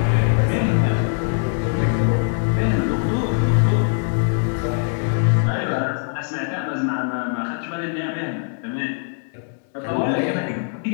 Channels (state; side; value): silent; right; 64 dB below the other